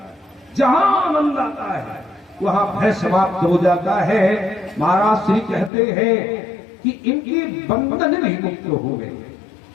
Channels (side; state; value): right; drops out; at 5.7 s